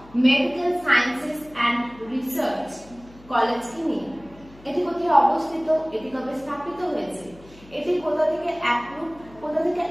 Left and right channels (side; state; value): left; noise; hum, 23 dB below the sound